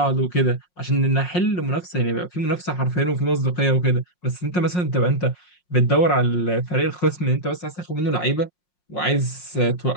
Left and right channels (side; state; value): right; late; 5.6 ms